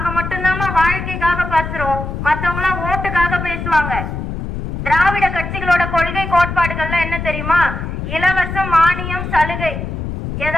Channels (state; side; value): noise; left; rumble, 5 dB below the sound